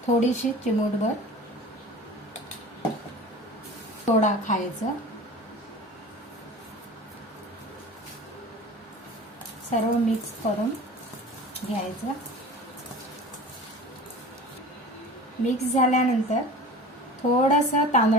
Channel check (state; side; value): normal; both; correlation 0.38